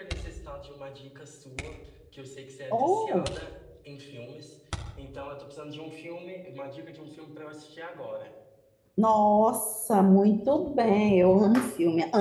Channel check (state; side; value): identical; both; correlation 1.00